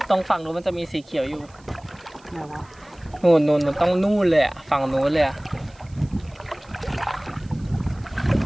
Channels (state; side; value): noise; right; hiss, 29 dB below the sound